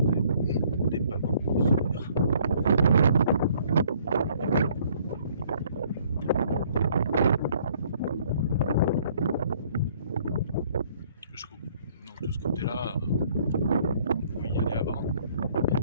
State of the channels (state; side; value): inverted; both; correlation -0.61